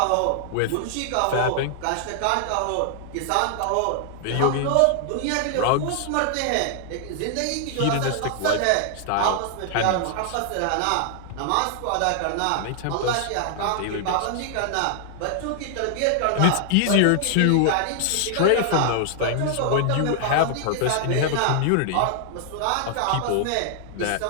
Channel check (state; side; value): different; both; correlation 0.00